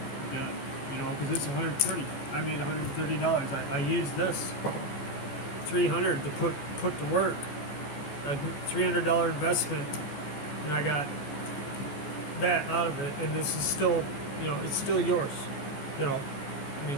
done. You know, because it's 130. I made $130. I used this 300 to put to work. A $300 investment, and I got that out of it. And this is still, you know, it's still yours. You know, I mean,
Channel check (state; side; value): late; right; 14 ms